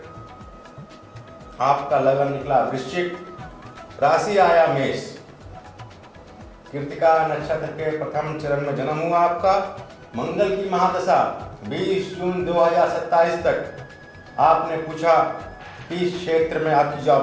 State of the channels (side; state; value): both; identical; correlation 1.00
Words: आपका लगन निकला वृश्चिक, राशि आया मेष। कृतिका नक्षत्र के प्रथम चरण में जन्म हुआ आपका। मंगल की महादशा 20 जून 2027 तक। आपने पूछा किस क्षेत्र में आपकी